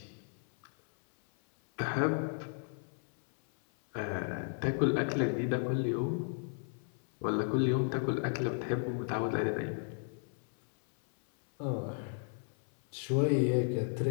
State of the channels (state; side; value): silent; right; 55 dB below the other